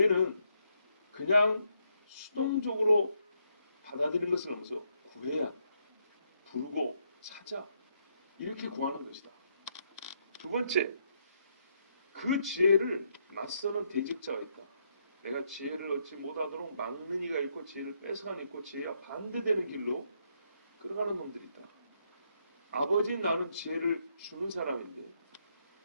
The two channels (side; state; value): both; inverted; correlation -0.76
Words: 그냥 수동적으로 받아들이는 것을 넘어서 구해야 한다. 부르고 찾아 이렇게 구하는 것이다. 두 번째, 그 지혜를 맞서는 대적자가 있다. 내가 지혜를 얻지 못하도록 막는 이가 있고 지혜를 뺏어가는 있고 지혜와 반대되는 길로 끌어가는 놈들이 있다. 아버지인 나는 지혜를 주는 사람인데